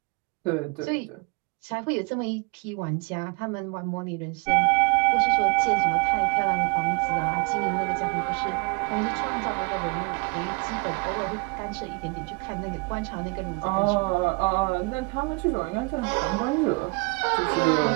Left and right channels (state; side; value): quieter; left; 29.5 dB